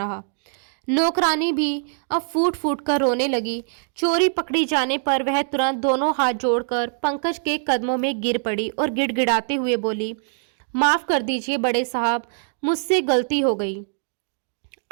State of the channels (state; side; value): silent; left; digital silence